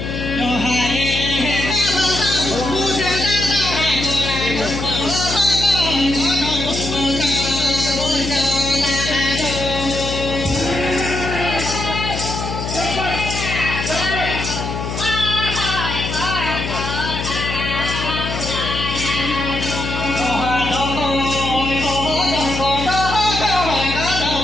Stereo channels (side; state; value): left; noise; hum, 5 dB below the sound